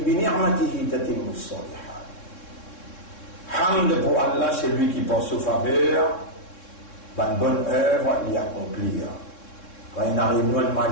ni'matihi tatimmu as-salihat. Hamd pour Allah, c'est lui qui pense aux faveurs, une bonne œuvre, l'y accomplir. Quand il arrive nous un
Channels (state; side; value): late; right; 3.7 ms